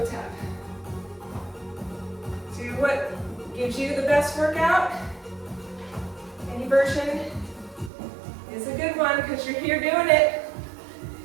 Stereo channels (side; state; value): left; drops out; at 7.9 s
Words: tap. Do what gives you the best workout. Any version is a good one because you're here doing it.